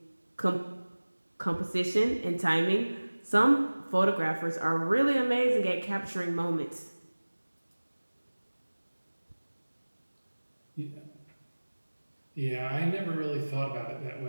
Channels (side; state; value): both; inverted; correlation -1.00